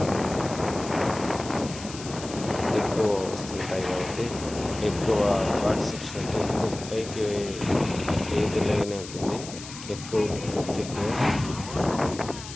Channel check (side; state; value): left; noise; hiss, 13 dB below the sound